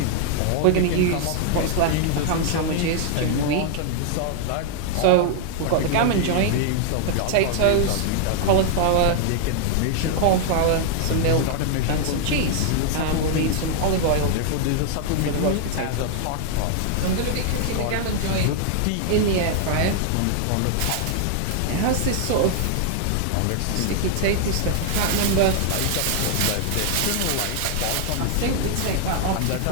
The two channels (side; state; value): both; different; correlation 0.00